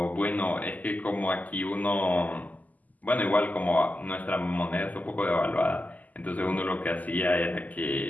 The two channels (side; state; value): right; late; 0.079 ms